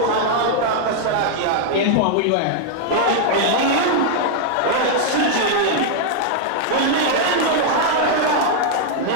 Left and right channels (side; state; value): both; different; correlation -0.01